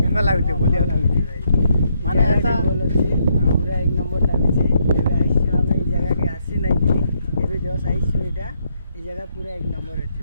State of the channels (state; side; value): inverted; both; correlation -0.74